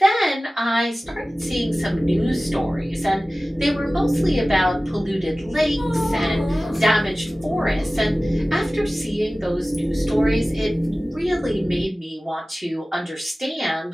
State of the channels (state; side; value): normal; both; correlation 0.97